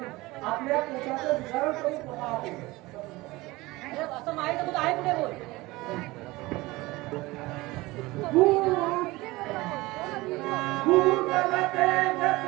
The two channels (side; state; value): left; quieter; 20.7 dB